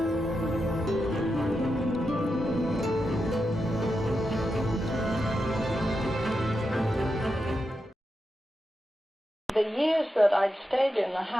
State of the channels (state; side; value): normal; both; correlation 0.87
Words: The years that I'd stayed in the